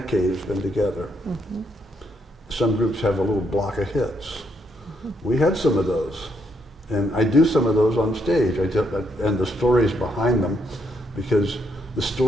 has been together. Some groups have a little block of hits. We had some of those. And I do some of those on stage. And the stories behind them because the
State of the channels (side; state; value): both; normal; correlation 0.75